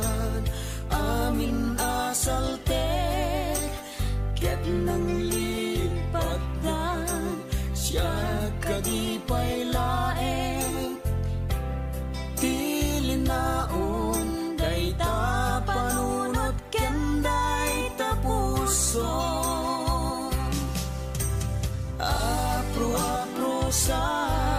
Amin asaltek Ket nang lipatan Siya kadipay laeng Tilinaon Dayta panunot Kenday tapuson Apro-aprosa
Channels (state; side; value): identical; both; correlation 1.00